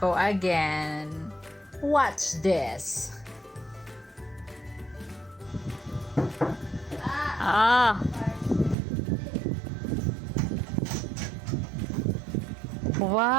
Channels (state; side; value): drops out; left; at 8.8 s